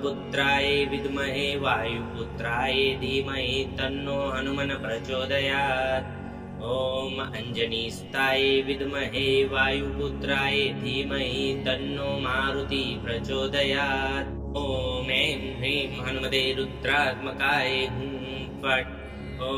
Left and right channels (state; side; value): identical; both; correlation 1.00